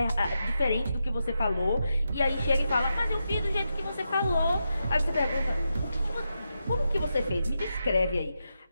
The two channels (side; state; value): both; inverted; correlation -0.86